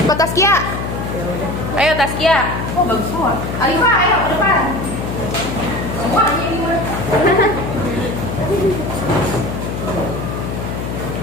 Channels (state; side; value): noise; left; hum, 5 dB below the sound